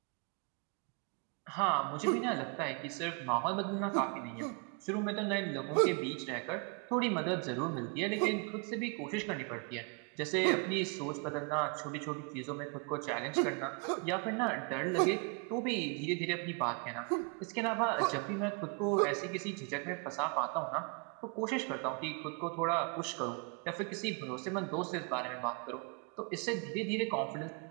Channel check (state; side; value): quieter; left; 35.5 dB